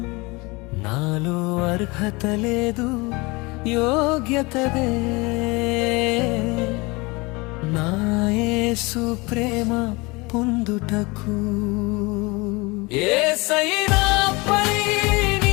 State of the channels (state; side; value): quieter; right; 25.3 dB